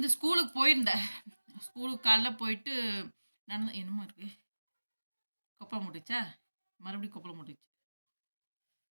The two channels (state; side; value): inverted; both; correlation -1.00